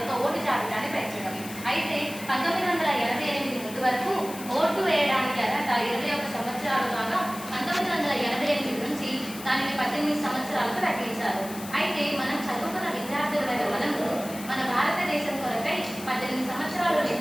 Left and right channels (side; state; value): left; noise; hiss, 13 dB below the sound